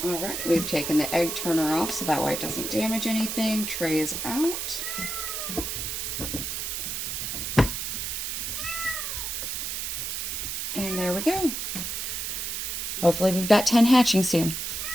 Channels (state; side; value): noise; right; hiss, 3 dB below the sound